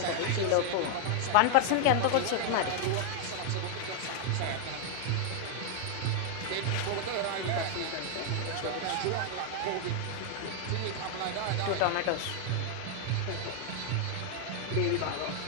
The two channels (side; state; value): both; different; correlation 0.00